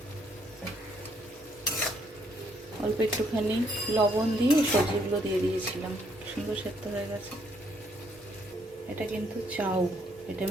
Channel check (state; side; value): normal; both; correlation 0.70